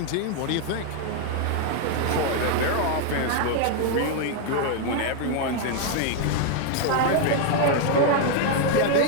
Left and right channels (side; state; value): both; different; correlation 0.01